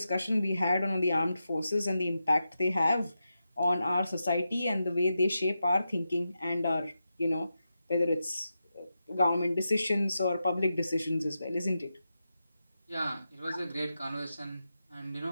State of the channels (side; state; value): both; inverted; correlation -0.89